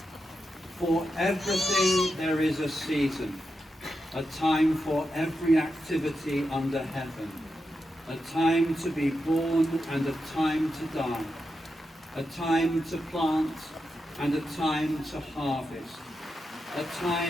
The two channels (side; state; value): both; normal; correlation 0.87